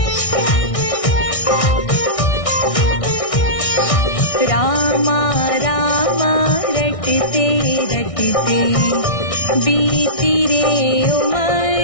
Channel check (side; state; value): right; late; 1.6 ms